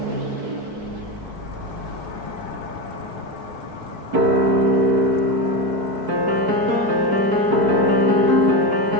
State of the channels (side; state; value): left; late; 4.6 ms